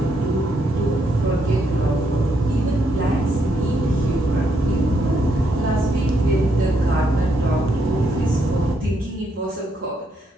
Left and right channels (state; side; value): normal; both; correlation 0.76